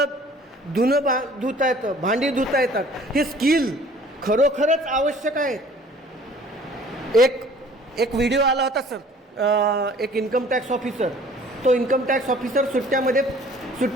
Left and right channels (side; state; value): both; normal; correlation 0.52